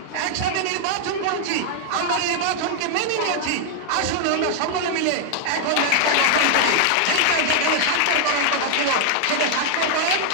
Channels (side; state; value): both; different; correlation 0.00